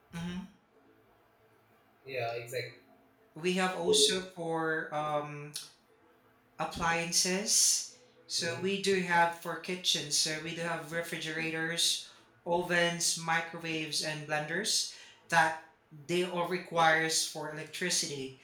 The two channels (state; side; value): identical; both; correlation 1.00